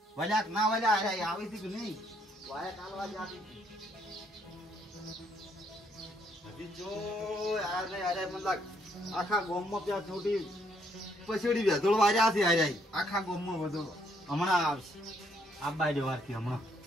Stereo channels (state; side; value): normal; both; correlation 0.70